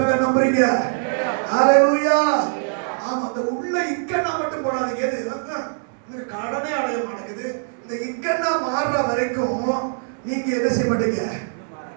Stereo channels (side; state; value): left; silent; 64 dB below the other